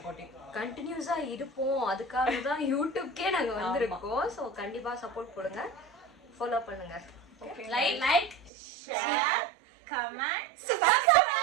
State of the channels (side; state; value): left; drops out; at 8.5 s